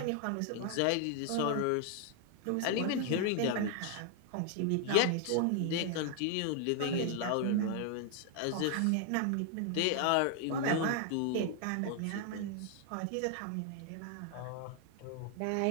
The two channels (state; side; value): different; both; correlation 0.00